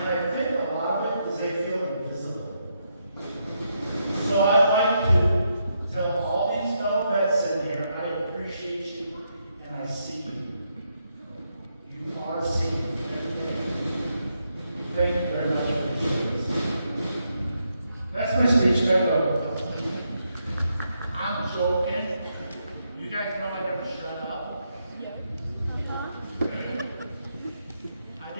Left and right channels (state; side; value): inverted; both; correlation -0.80